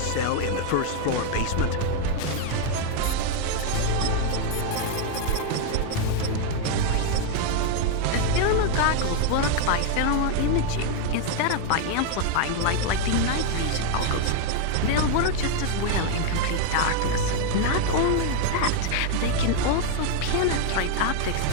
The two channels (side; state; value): both; different; correlation 0.01